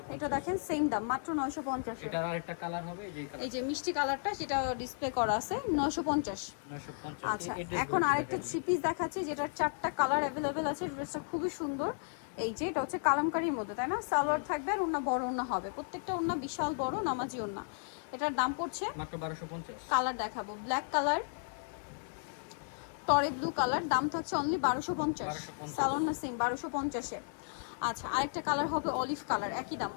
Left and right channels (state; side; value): silent; right; 55 dB below the other